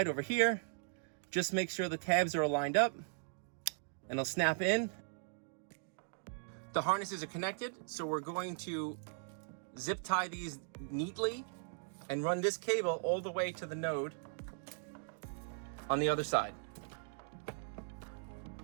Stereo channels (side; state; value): left; silent; digital silence